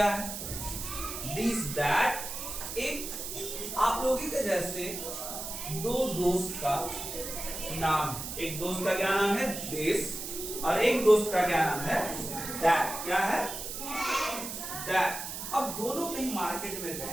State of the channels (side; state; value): right; noise; hiss, 7 dB below the sound